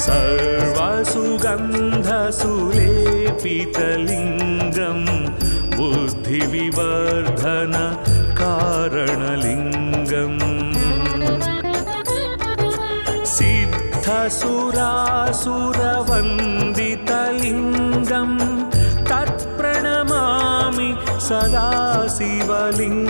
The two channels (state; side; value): inverted; both; correlation -1.00